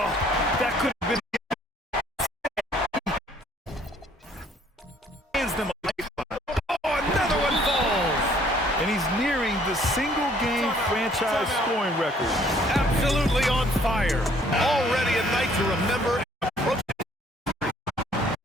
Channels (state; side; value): normal; both; correlation 0.61